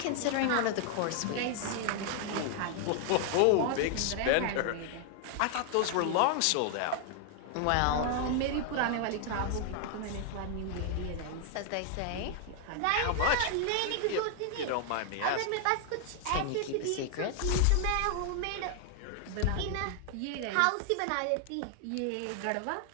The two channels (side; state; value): both; different; correlation 0.00